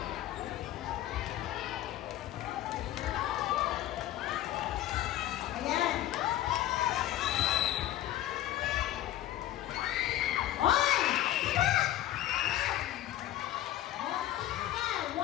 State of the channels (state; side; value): quieter; right; 13.5 dB